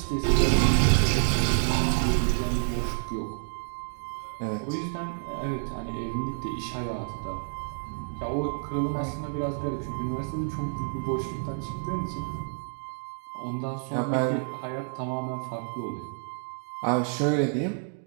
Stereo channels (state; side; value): silent; left; digital silence